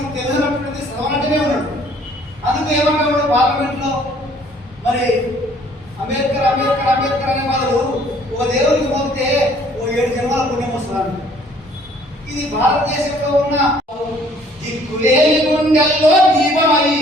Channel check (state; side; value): normal; both; correlation 0.59